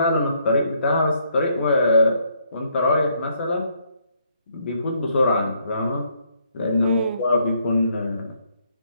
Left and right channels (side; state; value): both; inverted; correlation -0.72